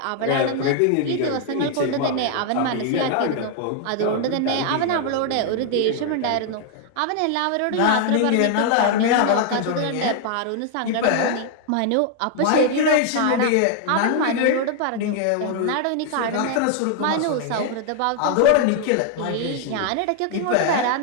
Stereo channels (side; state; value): both; different; correlation 0.00